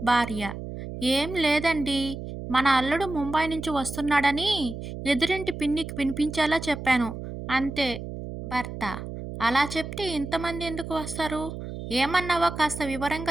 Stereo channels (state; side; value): noise; right; hum, 9 dB below the sound